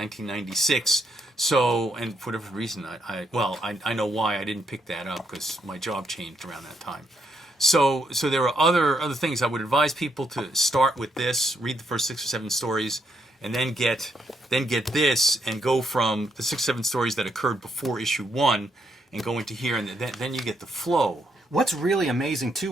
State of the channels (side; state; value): both; normal; correlation 0.77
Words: So, and for whatever reason, I know why I didn't pick that up, because my job changed around that time. So there are other things. I would advise people to start with this, read the first 6 or 7 stories, and then get this, and go from the 6 or 7 stories that occurred before issue 1, and go into here, and then you get the flow. What's really amazing too